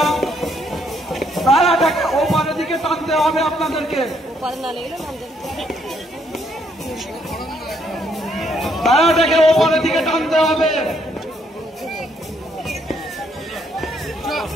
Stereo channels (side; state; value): both; normal; correlation 0.71